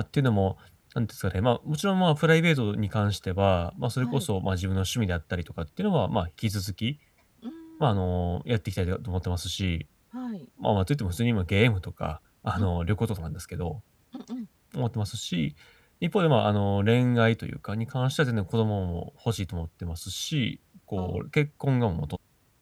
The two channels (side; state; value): both; identical; correlation 1.00